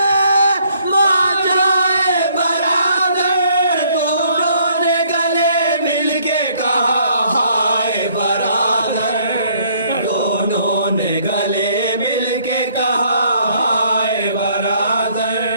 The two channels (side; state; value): both; inverted; correlation -0.64